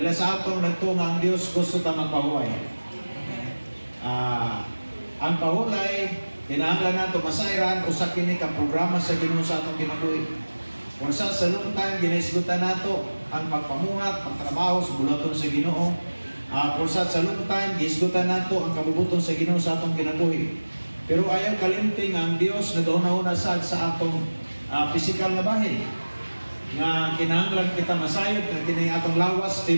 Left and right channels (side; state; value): both; inverted; correlation -1.00